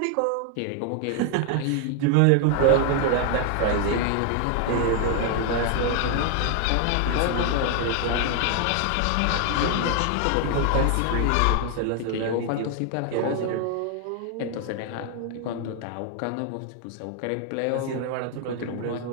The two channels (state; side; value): different; both; correlation 0.00